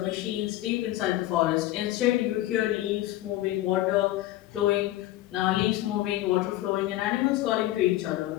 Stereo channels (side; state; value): right; quieter; 15.4 dB